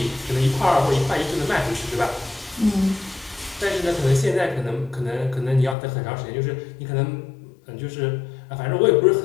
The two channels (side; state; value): right; drops out; at 5.8 s